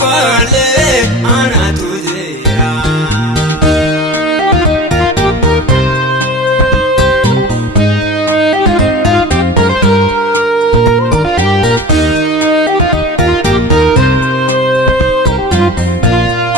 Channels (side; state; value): both; normal; correlation 0.39